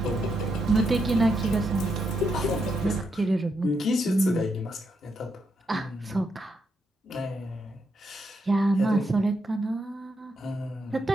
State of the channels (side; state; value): both; normal; correlation 0.81